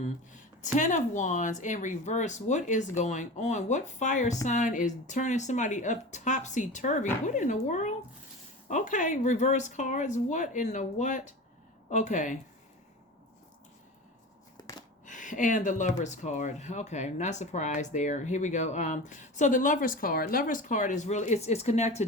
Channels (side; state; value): both; normal; correlation 0.31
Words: of Wands in reverse. What is going on? What fire sign is turning somebody up topsy-turvy? What in the world? Okay, reverse cards. What in the what? Okay. And the Lover's card. Okay, not surprised there. Here we go. So the Lover's card. Lover's card is really it's